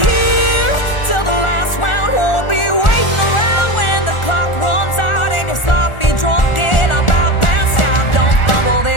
here till the last round. Won't be waiting around when the clock runs out and you're sloppy drunk and about passed out. Don't fumble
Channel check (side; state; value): right; late; 1.4 ms